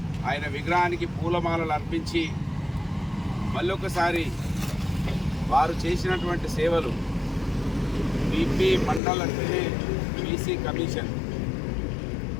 ఆయన విగ్రహానికి పూలమాలలు అర్పించి మళ్ళొకసారి వారు చేసినటువంటి సేవలు, బీపీ మండల్ అంటే బీసీ కమిషన్,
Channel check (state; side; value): drops out; right; at 9.0 s